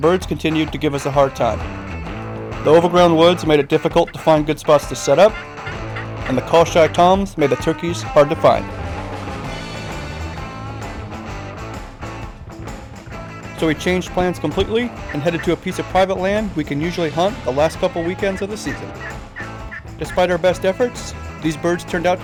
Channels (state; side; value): identical; both; correlation 1.00